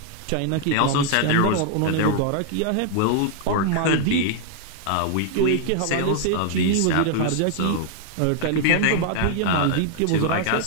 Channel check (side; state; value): both; different; correlation 0.00